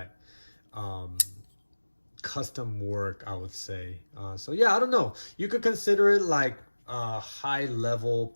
custom work, I would say. So yeah, I don't know. You could consider it like high level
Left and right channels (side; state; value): both; inverted; correlation -1.00